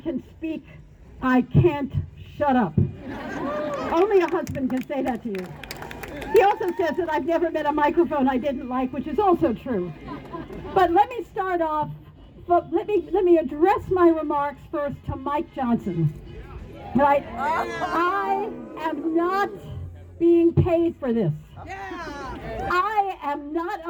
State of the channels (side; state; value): both; identical; correlation 1.00